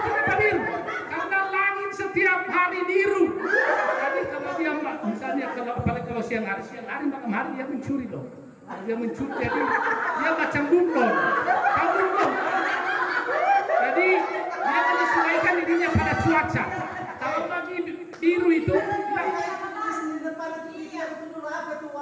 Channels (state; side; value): identical; both; correlation 1.00